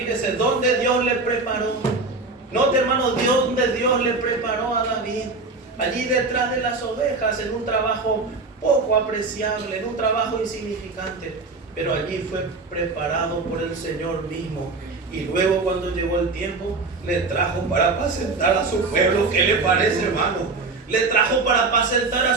dónde Dios le preparó. Note, hermano, donde Dios le preparó a David. Allí detrás de las ovejas, en un trabajo poco apreciable, en un trabajo insignificante. Pero allí fue preparado por el Señor mismo. Y luego, cuando llegó el tiempo, le trajo para apacentar a su pueblo. ¿Qué le parece, hermano? Le trajo para apacentar a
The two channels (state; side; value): quieter; left; 3.8 dB